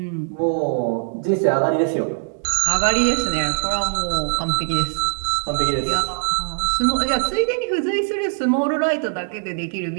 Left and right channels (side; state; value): left; silent; digital silence